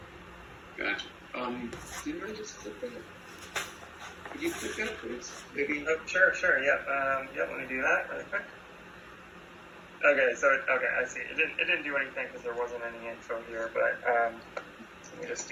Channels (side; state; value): both; identical; correlation 1.00